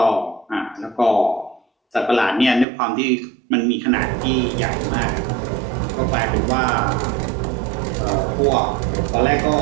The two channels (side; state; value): left; drops out; at 2.7 s